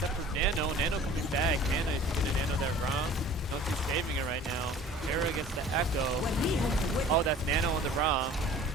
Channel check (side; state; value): both; normal; correlation 0.47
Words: for Nano. Nano coming back. Ana is going to Nano that Rom. No, she's saving it right now. Pharah gets the Echo. Oh, that's Nano on the Rom.